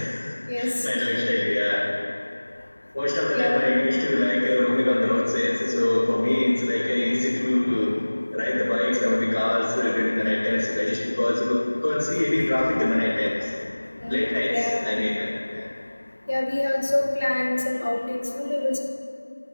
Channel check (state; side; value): inverted; both; correlation -1.00